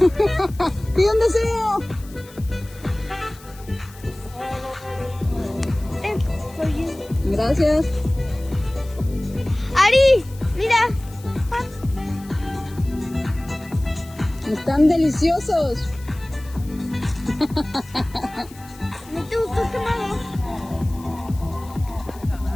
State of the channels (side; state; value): left; noise; hiss, 22 dB below the sound